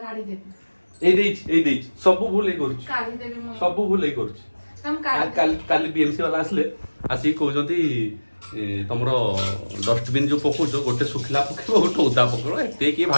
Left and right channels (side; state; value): both; inverted; correlation -1.00